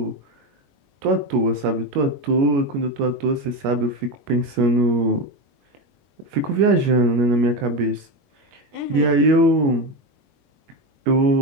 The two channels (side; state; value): left; late; 21 ms